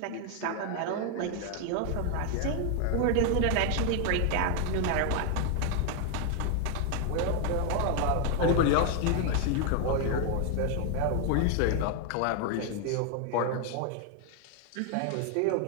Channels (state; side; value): different; both; correlation 0.00